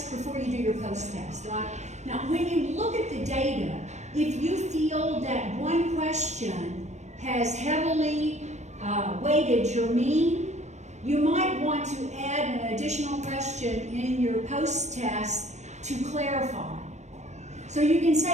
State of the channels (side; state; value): left; late; 0.33 ms